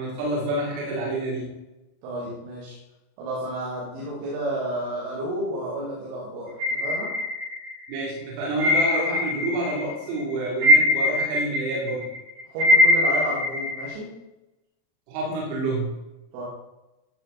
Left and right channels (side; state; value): left; late; 38 ms